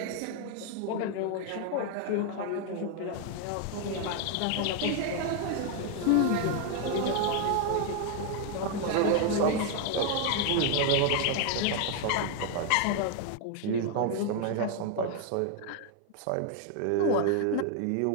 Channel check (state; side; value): different; both; correlation 0.01